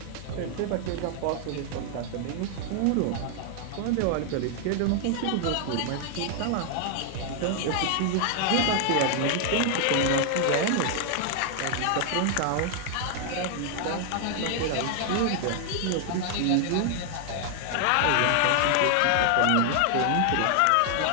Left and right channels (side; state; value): both; different; correlation 0.00